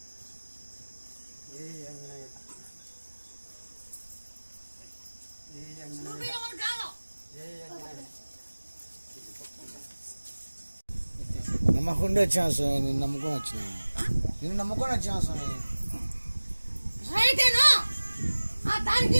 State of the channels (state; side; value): inverted; both; correlation -1.00